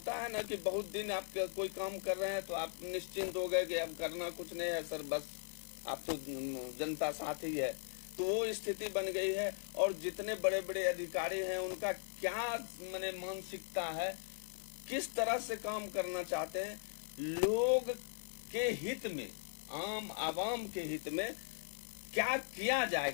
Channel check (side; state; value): right; silent; digital silence